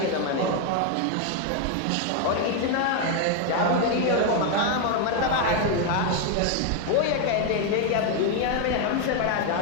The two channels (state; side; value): different; both; correlation 0.01